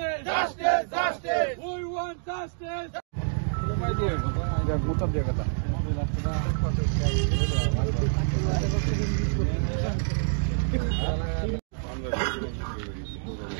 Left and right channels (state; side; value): silent; left; digital silence